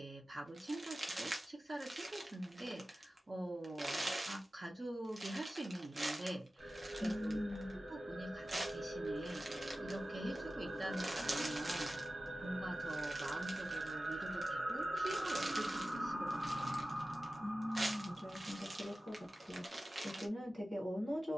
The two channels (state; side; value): normal; both; correlation 0.95